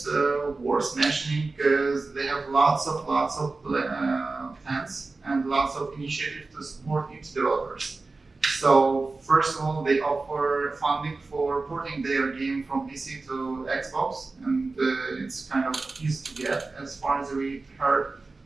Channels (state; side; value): quieter; left; 3.7 dB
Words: worth mentioning because they have lots of plans and lots of initiatives to support indie developers. So first of all, they offer funding for porting their game from PC to Xbox, and it's kind of easy to get as far as we heard.